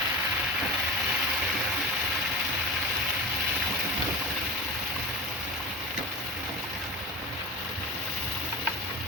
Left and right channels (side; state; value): both; normal; correlation 0.30